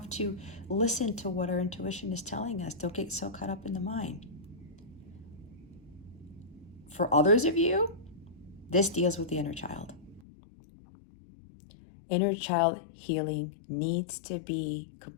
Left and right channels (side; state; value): right; drops out; at 10.2 s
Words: to listen to what our intuition is telling us. Don't get so caught up in the mind. For others of you, this deals with the inner child. Inner child healing needs to be